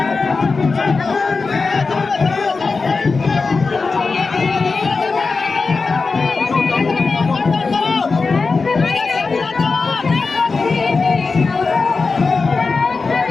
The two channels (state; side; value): quieter; right; 4.3 dB